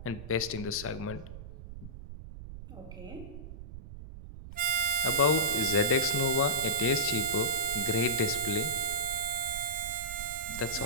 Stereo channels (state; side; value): noise; right; rumble, 13 dB below the sound